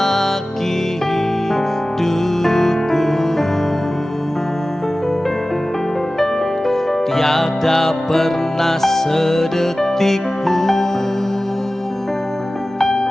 hidupku. Tiada pernah sedetik pun,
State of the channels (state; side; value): normal; both; correlation 0.96